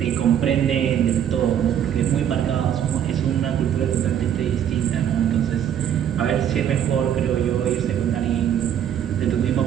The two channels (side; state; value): left; quieter; 9.6 dB